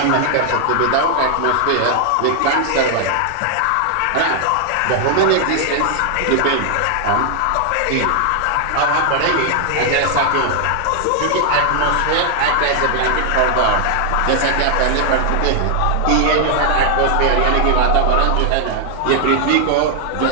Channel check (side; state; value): both; different; correlation 0.00